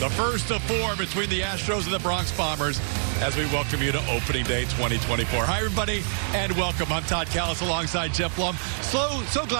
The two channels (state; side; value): silent; left; digital silence